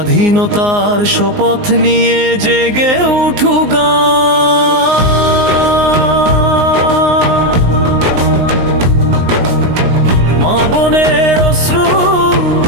শপথ নিয়ে জেগে উঠু গান। মা বোনের অশ্রু,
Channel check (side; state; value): left; late; 19 ms